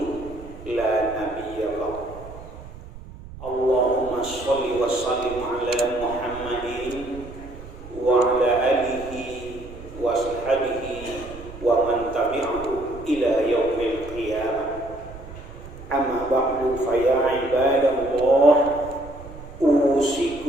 la nabiyya ba'd. Allahumma sholli wa sallim ala Muhammadin wa ala alihi wa sahbihi wa man tabi'ahu ila yaumil qiyamah. Amma ba'du fa ya ibadallah,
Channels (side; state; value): right; noise; rumble, 15 dB below the sound